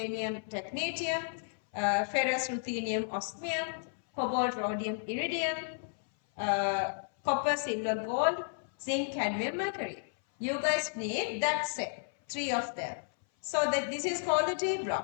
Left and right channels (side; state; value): right; silent; 56 dB below the other